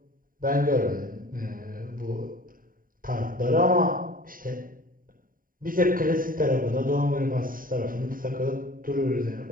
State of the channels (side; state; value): left; late; 0.41 ms